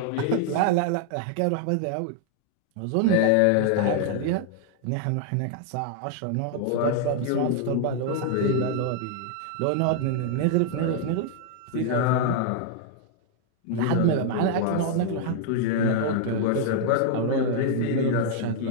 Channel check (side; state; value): both; different; correlation 0.00